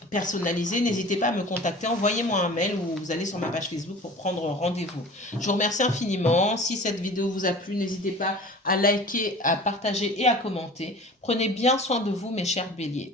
personnalisée, n'hésitez pas à me contacter. Envoyez-moi un mail ou vous allez sur ma page Facebook pour prendre rendez-vous. Je vous remercie infiniment. Si cette vidéo vous a plu, n'hésitez pas à liker, à partager et à commenter. Prenez bien soin de vous, mes chers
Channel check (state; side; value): normal; both; correlation 0.41